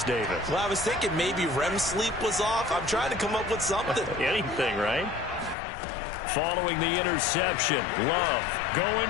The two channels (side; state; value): right; drops out; at 5.6 s